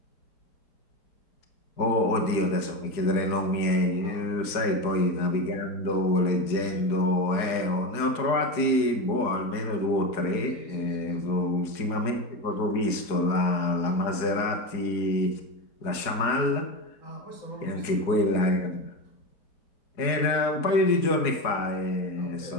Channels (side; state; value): right; late; 4.8 ms